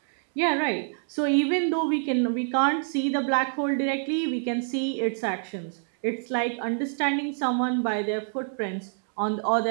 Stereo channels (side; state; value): left; silent; digital silence